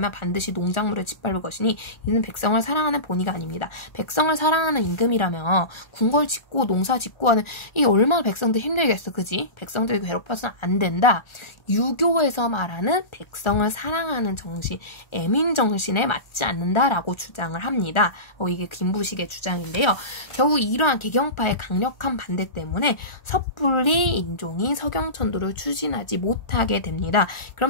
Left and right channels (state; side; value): late; right; 1.4 ms